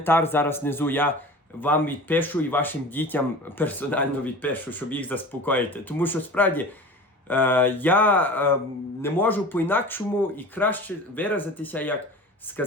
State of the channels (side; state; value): both; normal; correlation 0.37